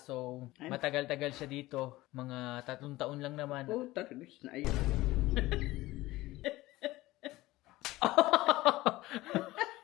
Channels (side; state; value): right; quieter; 18.3 dB